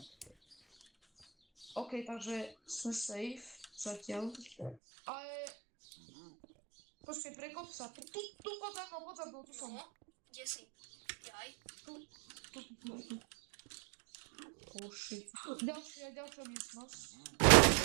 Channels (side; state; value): left; drops out; at 4.8 s